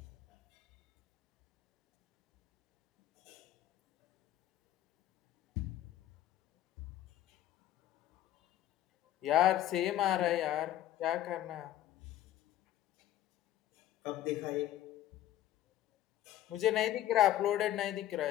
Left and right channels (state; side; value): quieter; right; 12.8 dB